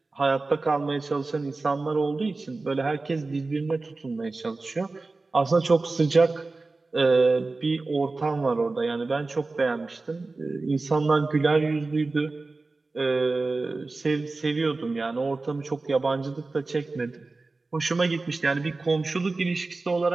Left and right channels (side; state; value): left; quieter; 3.5 dB